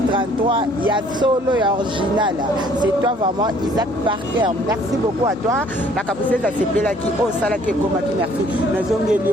33, il y a solo et original. C'est toi vraiment Isaac Parker. Merci beaucoup à toi. La capacité de se là qui au sala qui comme qui merci. Nous avons gagné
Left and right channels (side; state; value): both; normal; correlation 0.59